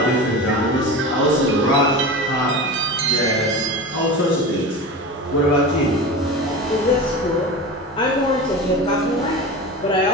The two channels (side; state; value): both; normal; correlation 0.29